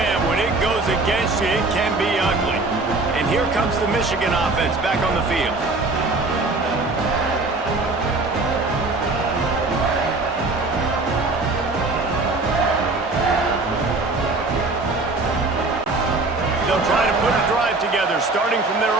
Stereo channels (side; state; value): left; quieter; 3.3 dB